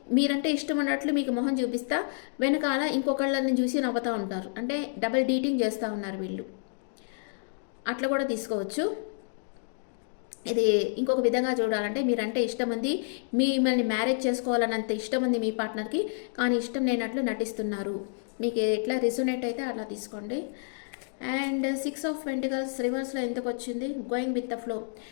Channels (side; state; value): right; silent; digital silence